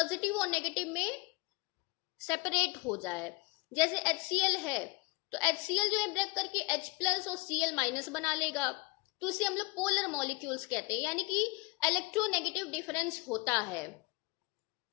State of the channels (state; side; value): quieter; right; 25.9 dB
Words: और नेगेटिव में सेपरेट हो जाए। जैसे HCl है, तो HCl जो है ब्रेक करके H+ और Cl- बना लेगा, तो उसे हम लोग पोलर मॉलिक्यूल्स कहते हैं, यानी कि इलेक्ट्रोनेगेटिव डिफरेंस होता है।